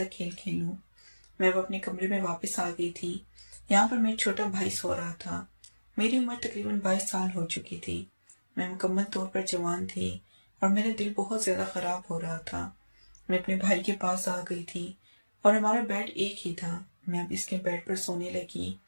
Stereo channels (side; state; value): both; inverted; correlation -1.00